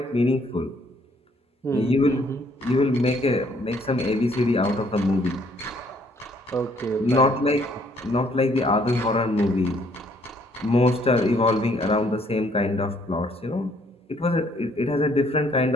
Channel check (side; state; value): both; normal; correlation 0.64